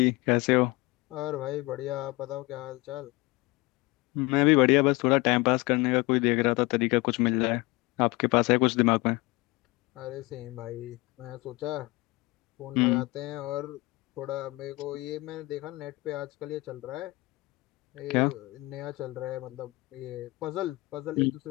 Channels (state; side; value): quieter; right; 22.4 dB